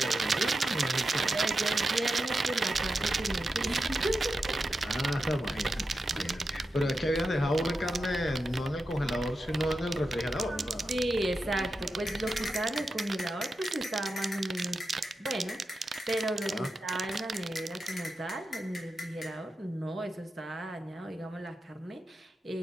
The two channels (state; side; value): normal; both; correlation 0.89